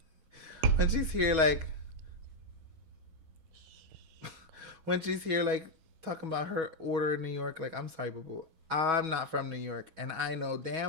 when she's here, like, talking about her order in New York, like, I'm sorry, boo-boo. I'm not from New York. And I know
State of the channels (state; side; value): late; left; 6.2 ms